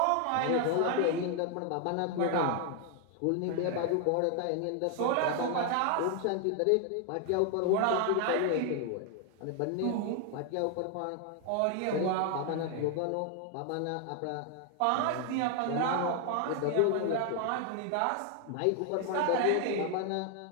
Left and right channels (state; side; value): different; both; correlation 0.00